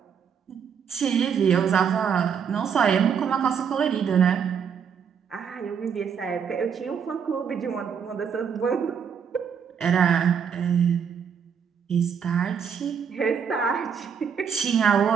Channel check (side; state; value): left; quieter; 7.1 dB